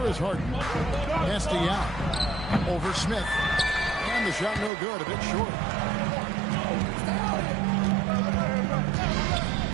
is Harden. Pass to Yao. Over Smith. And the shot no good, a bit short.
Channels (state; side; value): drops out; left; at 4.7 s